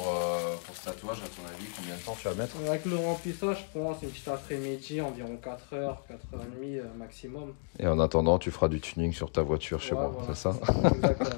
tatouage, à ton avis, combien de temps tu vas mettre? Avec le remplissage, je pense, une petite après-midi, environ 4 heures, 4h30 maximum. Et en attendant, tu feras du tuning sur ta voiture, Ouais, voilà, c'est c'est ça? ça.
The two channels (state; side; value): silent; right; 56 dB below the other